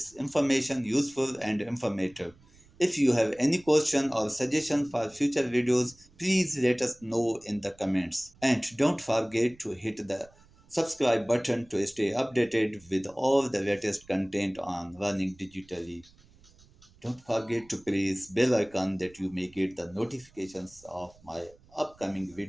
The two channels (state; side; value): noise; right; rumble, 27 dB below the sound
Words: information useful and informative. If you have any question or suggestion for future videos, please let us know in the comments. And don't forget to hit the subscribe button to stay updated with all the latest content on Learning Digitally. Don't forget to press bell icon that you may get the notifications of my upcoming